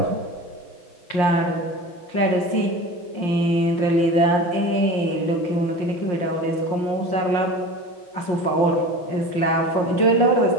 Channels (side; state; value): right; late; 5.7 ms